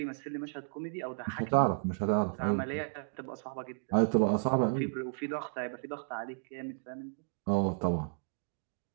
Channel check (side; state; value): left; silent; digital silence